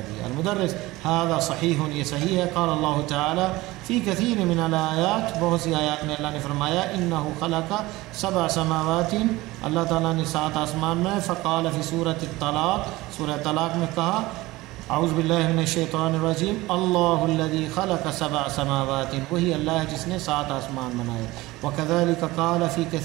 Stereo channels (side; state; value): left; quieter; 19.6 dB